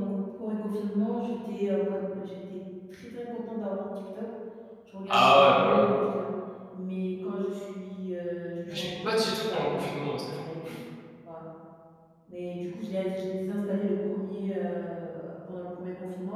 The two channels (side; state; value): both; identical; correlation 1.00